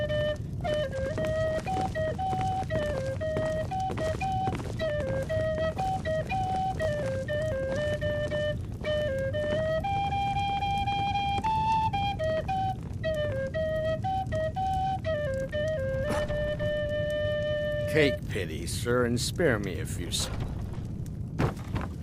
Take pity, sir, and spare me a few seconds.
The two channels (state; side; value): identical; both; correlation 1.00